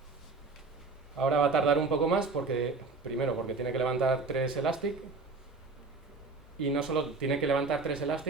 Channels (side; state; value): left; quieter; 3.9 dB